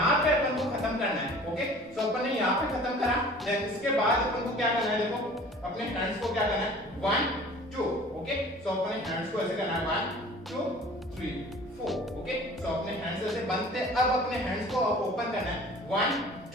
पे अपन को खत्म करना है, ओके। सो अपन ने यहाँ पे खत्म करा। देन इसके बाद अपन को क्या करना है, देखो अपने हैंड्स को क्या करना है 1 2, ओके। सो अपने हैंड्स को ऐसे करना है 1 2 3 4, ओके। सो अपने हैंड्स ऐसे बनते, अब अपने हैंड्स को ओपन करना है 1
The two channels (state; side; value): normal; both; correlation 0.46